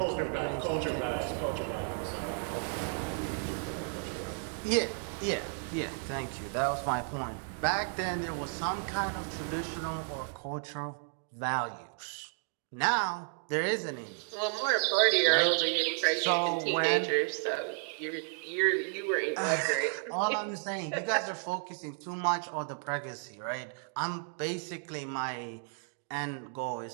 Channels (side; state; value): left; silent; 56 dB below the other